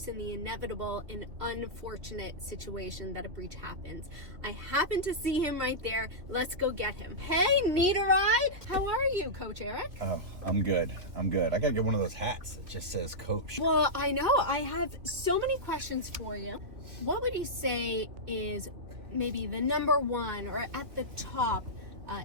in the inevitable and unfortunate situation that a breach happens. I happen to see him right there. Let's go get him. Hey, need a ride? How are you, Coach Eric? Oh, I'm good. I gotta get one of those hats that just says Coach. Well, I know. I have so many questions for you. What would you say is maybe the number one or at the top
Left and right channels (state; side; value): late; left; 2.6 ms